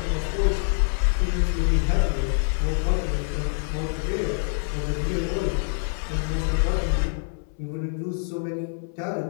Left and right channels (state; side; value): silent; right; 61 dB below the other